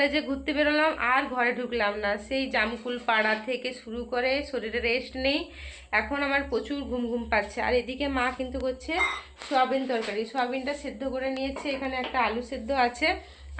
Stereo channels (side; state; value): both; identical; correlation 1.00